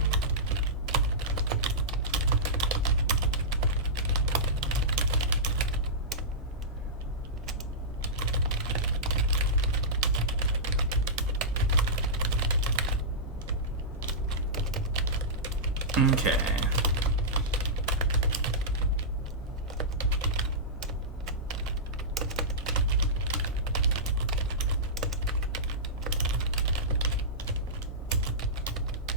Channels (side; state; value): both; normal; correlation -0.14